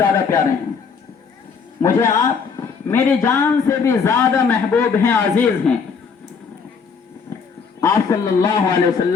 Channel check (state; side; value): quieter; right; 5.7 dB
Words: پیارے ہیں، مجھے آپ میری جان سے بھی زیادہ محبوب ہیں، عزیز ہیں۔ آپ صلی اللہ علیہ